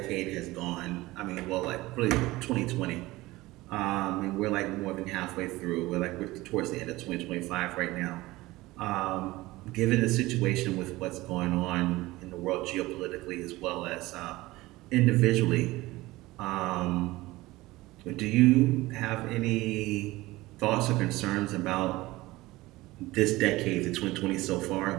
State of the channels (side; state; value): left; quieter; 19.3 dB